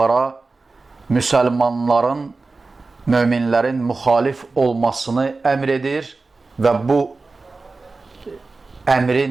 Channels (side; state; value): left; quieter; 3.7 dB